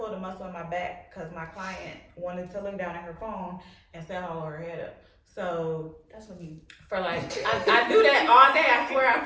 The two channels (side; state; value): both; identical; correlation 1.00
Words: a muscle in my back because my client wanted to look down at her phone instead of hold her head up. So That's what you. for like, I do that all day. I swear, I